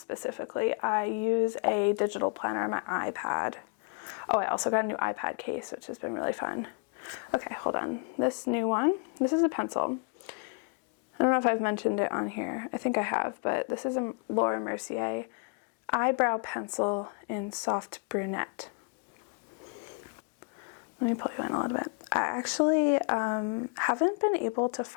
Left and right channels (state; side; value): quieter; right; 35.9 dB